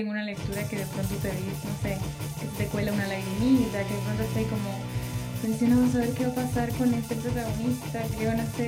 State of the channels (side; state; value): both; identical; correlation 1.00